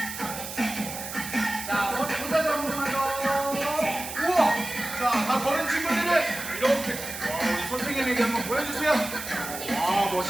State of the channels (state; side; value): noise; right; hiss, 9 dB below the sound